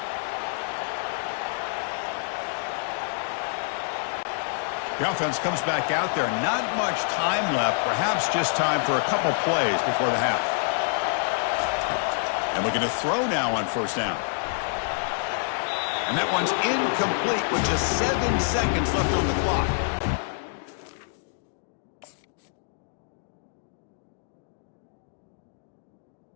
The offense comes back out there. Not much time left. Perhaps just time for a couple plays before the half. And looking to throw now on first down. And that one's incomplete with just 7 seconds left on the clock.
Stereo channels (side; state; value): right; silent; digital silence